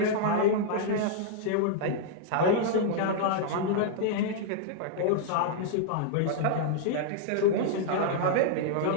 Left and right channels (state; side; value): different; both; correlation -0.01